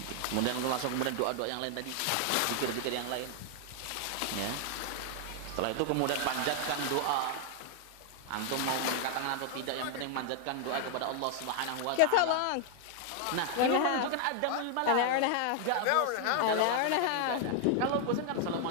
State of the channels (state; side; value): different; both; correlation 0.00